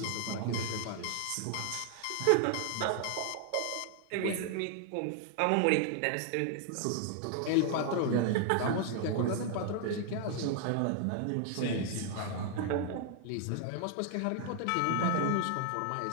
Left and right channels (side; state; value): both; different; correlation 0.00